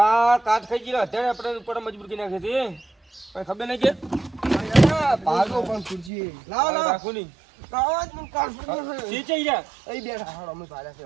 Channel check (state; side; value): drops out; left; at 6.1 s